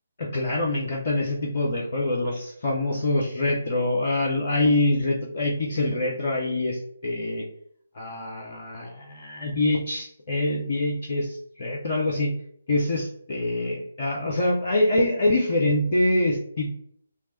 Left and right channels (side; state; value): both; inverted; correlation -0.77